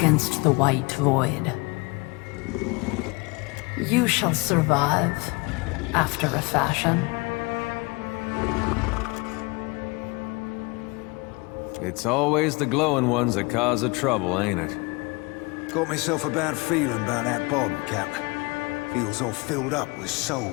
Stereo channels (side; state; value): right; quieter; 27.2 dB